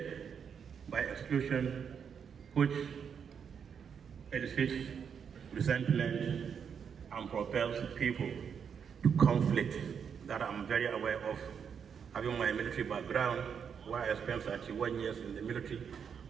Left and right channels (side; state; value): left; quieter; 7.1 dB